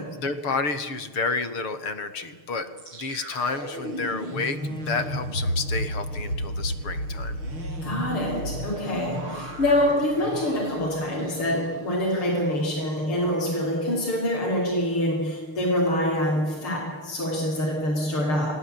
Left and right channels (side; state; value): right; late; 6.6 ms